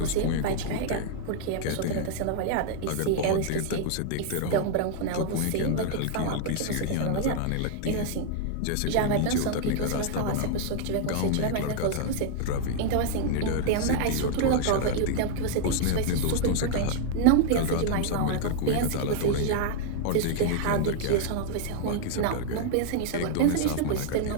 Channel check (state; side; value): different; both; correlation 0.00